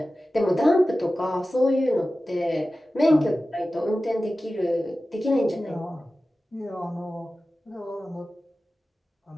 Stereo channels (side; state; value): both; normal; correlation 0.95